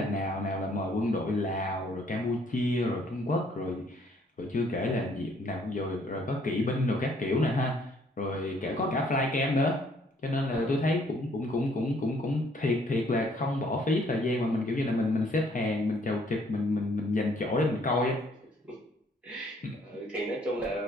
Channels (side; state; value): both; normal; correlation 0.64